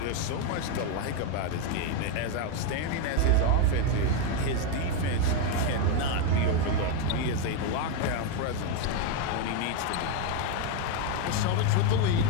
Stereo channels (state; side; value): different; both; correlation 0.02